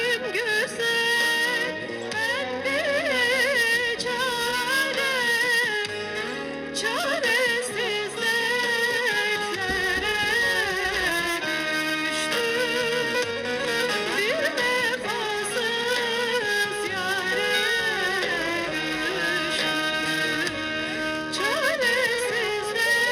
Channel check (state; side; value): identical; both; correlation 1.00